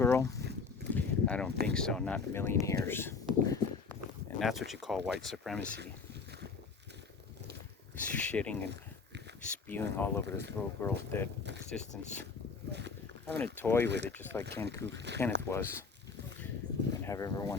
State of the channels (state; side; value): quieter; right; 4.9 dB